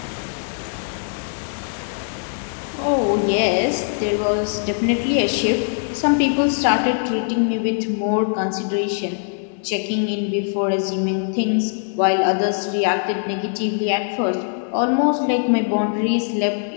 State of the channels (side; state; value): right; silent; digital silence